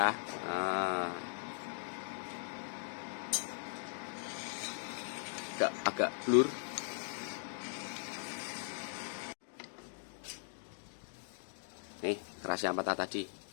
Agak blur. Nih keras yang patah tadi,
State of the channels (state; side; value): silent; right; digital silence